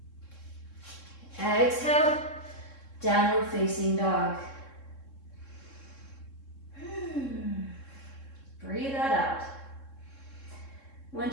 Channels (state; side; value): late; right; 3.7 ms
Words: Exhale, downward facing dog. Breathe that out.